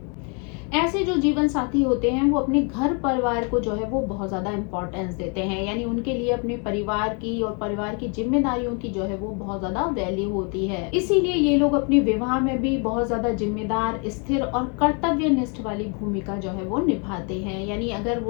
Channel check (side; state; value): right; quieter; 36.0 dB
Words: ऐसे जो जीवन साथी होते हैं वो अपने घर परिवार को जो है वो बहुत ज्यादा इंपॉर्टेंस देते हैं, यानी उनके लिए अपने परिवार की और परिवार की जिम्मेदारियों की जो है वो बहुत ज्यादा वैल्यू होती है। इसीलिए ये लोग अपने विवाह में भी बहुत ज्यादा जिम्मेदार, स्थिर और कर्तव्यनिष्ठ वाली भूमिका जो है वो निभाते हैं। यानी अगर